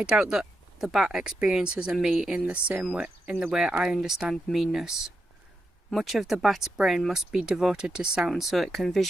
doubt that the bat experiences a me in the way I understand meanness. Much of the bat's brain must be devoted to sound so it can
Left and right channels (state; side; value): normal; both; correlation 0.86